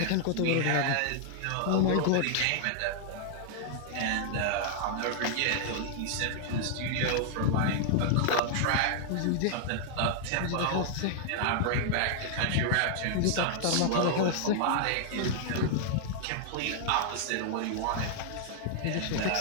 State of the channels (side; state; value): both; different; correlation -0.01